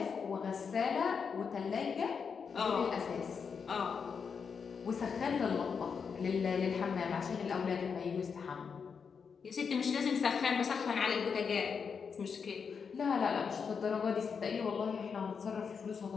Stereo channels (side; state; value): right; quieter; 6.1 dB